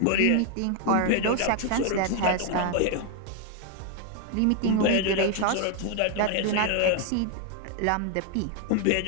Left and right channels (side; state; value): both; different; correlation 0.01